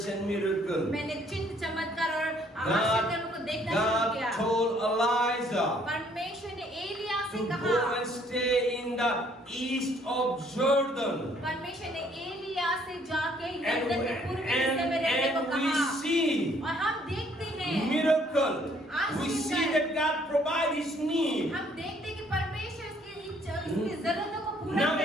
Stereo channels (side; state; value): both; normal; correlation 0.63